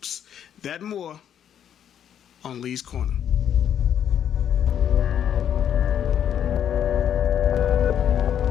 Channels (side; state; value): right; quieter; 9.4 dB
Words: That and more on Lee's Corner.